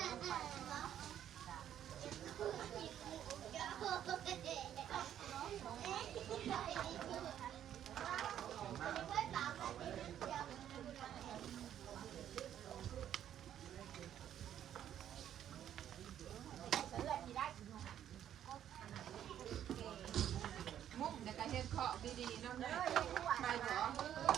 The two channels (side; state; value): left; quieter; 10.5 dB